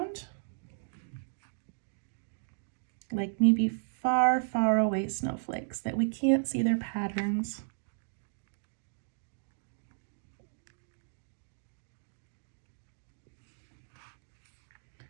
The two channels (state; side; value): silent; left; digital silence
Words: like maybe far, far away snowflakes that we can't see their patterns.